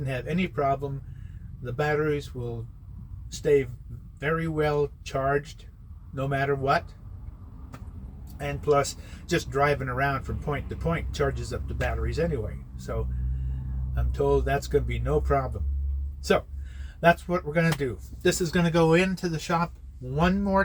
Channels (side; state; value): both; identical; correlation 1.00